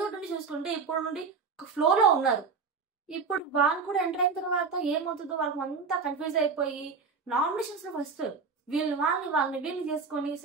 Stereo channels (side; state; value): left; quieter; 5.0 dB